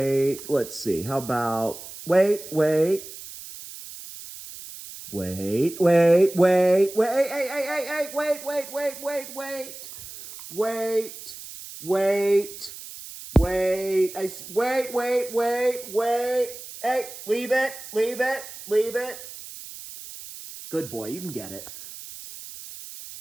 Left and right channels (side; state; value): right; noise; hiss, 13 dB below the sound